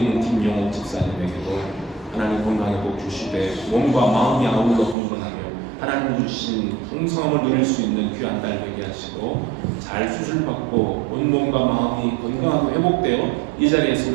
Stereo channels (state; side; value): drops out; left; at 5.0 s